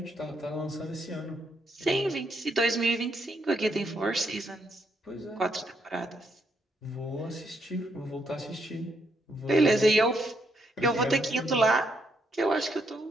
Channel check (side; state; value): both; normal; correlation 0.76